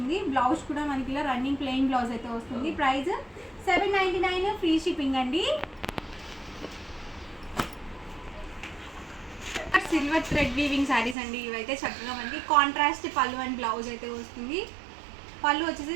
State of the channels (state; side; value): drops out; left; at 11.2 s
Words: బ్లౌజ్ కూడా మనకి ఇలా రన్నింగ్ ప్లెయిన్ బ్లౌజ్ అయితే వస్తుంది. ప్రైస్ 799, ఫ్రీ షిప్పింగ్ అండి. సిల్వర్ థ్రెడ్ వీవింగ్ శారీస్ అండి. ఇవైతే చక్కగా మనకి కాంట్రాస్ట్ పళ్ళు అండ్ బ్లౌజ్ అయితే వస్తుంది. పళ్ళు వచ్చేసి